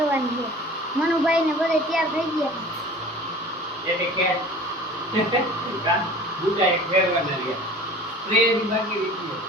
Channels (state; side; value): normal; both; correlation 0.42